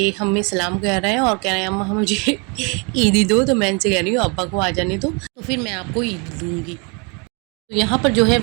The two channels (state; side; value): quieter; left; 33.2 dB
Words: हमें सलाम कह रहे हैं और कह रहे हैं अम्मा मुझे ईदी दो। तो मैं इनसे कह रही हूँ अब्बा को आ जाने दो, तो फिर मैं आपको ईद दूँगी। तो यहाँ पर जो है